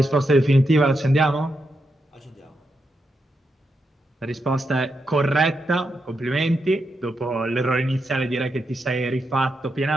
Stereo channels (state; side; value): normal; both; correlation 0.84